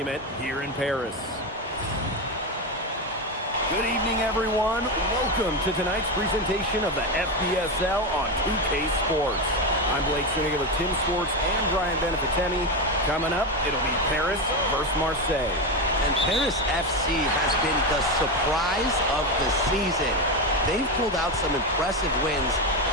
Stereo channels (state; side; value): normal; both; correlation 0.14